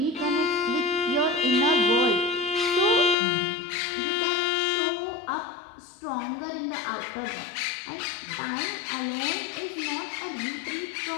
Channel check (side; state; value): right; drops out; at 3.2 s